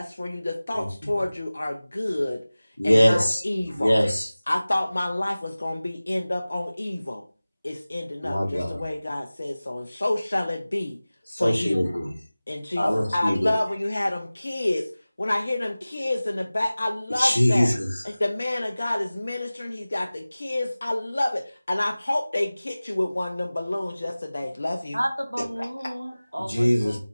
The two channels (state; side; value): inverted; both; correlation -0.98